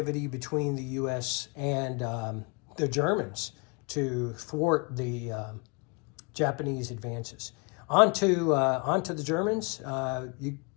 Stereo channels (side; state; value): right; quieter; 32.6 dB